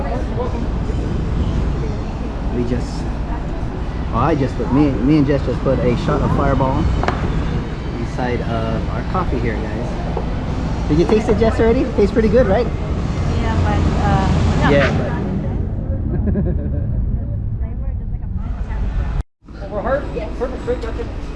we just, I just put, me and Jess just put a shot of Fireball inside of our coffee here, guys. Did you taste it, Jess, already? It tastes pretty good, right? Yeah, but yeah, Over heart? Yes. Perfect, great, that's it.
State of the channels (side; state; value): both; identical; correlation 1.00